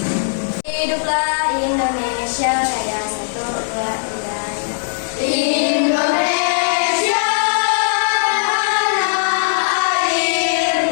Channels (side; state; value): right; silent; digital silence